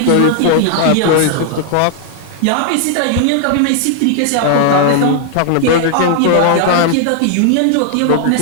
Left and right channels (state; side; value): different; both; correlation 0.00